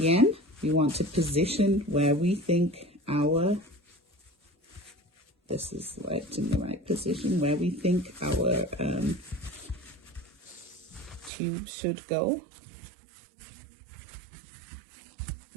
we want to position where we think this is right in the right position, where we think our tube should go.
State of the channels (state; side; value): drops out; left; at 11.3 s